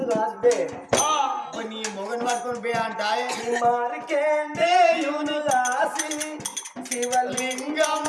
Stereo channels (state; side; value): identical; both; correlation 1.00